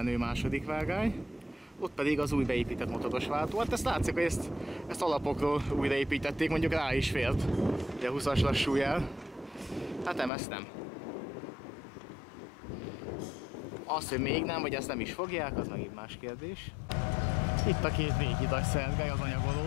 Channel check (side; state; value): right; drops out; at 10.3 s